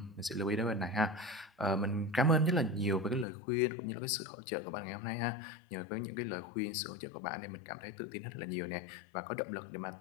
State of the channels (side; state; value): right; drops out; at 3.2 s